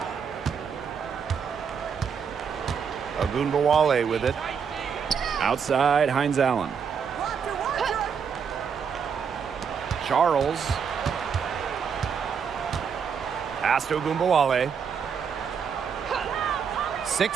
Ogunbowale with it. Outside, Hines Allen. Charles. Pass to Ogunbowale.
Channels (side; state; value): left; quieter; 6.7 dB